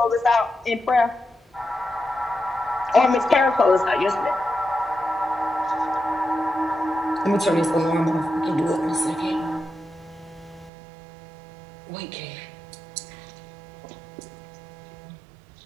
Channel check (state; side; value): drops out; left; at 10.7 s